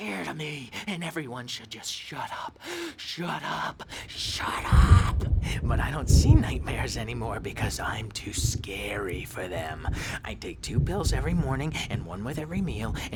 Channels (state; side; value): identical; both; correlation 1.00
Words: of me, and everyone should just shut up, shut up, shut up. But I don't see nightmares anymore because I'm too scary for them. I take 2 pills every morning and 1 with every meal